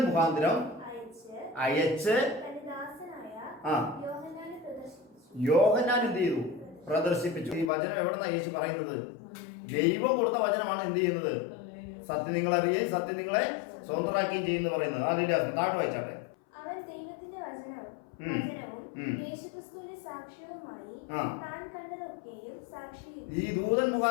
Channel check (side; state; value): right; drops out; at 7.7 s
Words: മുഖാന്തരം അയച്ച് യോഹന്നാൻ എന്ത് ചെയ്തു? പ്രദർശിപ്പിച്ചു. ഈ വചനം എവിടെന്നാ യേശു പറയുന്നത്? ദൈവം കൊടുത്ത വചനമാണ് എന്ത് ചെയ്യുന്നത്? സത്യം നിങ്ങൾ അറിയുകയും സത്യം നിങ്ങളെ സ്വതന്ത്രമാക്കുകയും ചെയ്യുന്നു പറയുന്നത്. ഹല്ലേലൂയ. താഴെ വായിച്ചാട്ടെ. ഈ ദൂതൻ